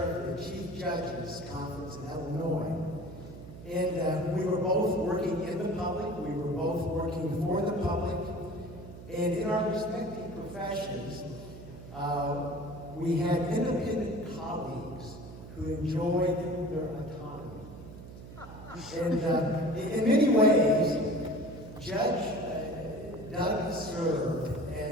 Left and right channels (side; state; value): right; noise; hum, 14 dB below the sound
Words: the Chief Judges Conference in Illinois. And we were both working in the public, we were both working for the public, and in our respective professions, we had independent colleagues who enjoyed their autonomy. And in many ways, Judge Doug served